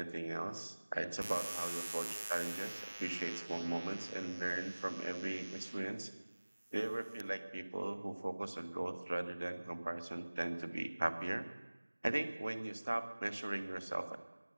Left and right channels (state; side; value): inverted; both; correlation -1.00